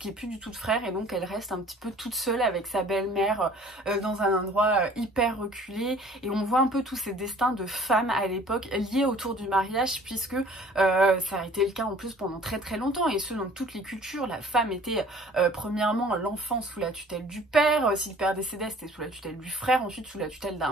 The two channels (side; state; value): both; normal; correlation 0.51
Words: qu'il n'y ait plus du tout de frère, et donc elle reste un petit peu toute seule avec sa belle-mère dans un endroit hyper reculé, et on voit un peu tous ces destins de femmes à l'époque liés autour du mariage, puisque ça a été le cas en plus pendant très longtemps, et ce dans toutes les cultures. La femme était premièrement l'enfant sous la tutelle du père, si le père décédait c'était sous la tutelle du frère, ensuite sous la tutelle